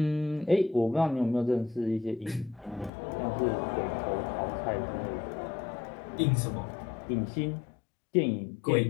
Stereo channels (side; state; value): right; drops out; at 2.9 s